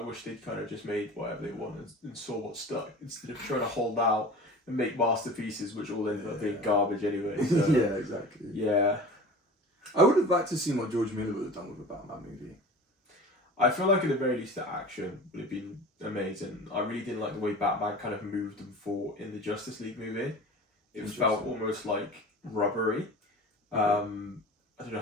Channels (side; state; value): both; normal; correlation 0.38